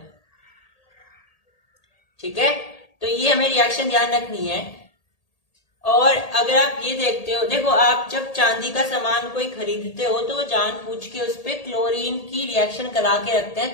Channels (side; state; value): right; late; 1.8 ms